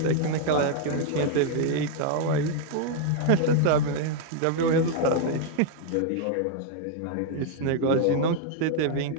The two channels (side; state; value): both; different; correlation 0.00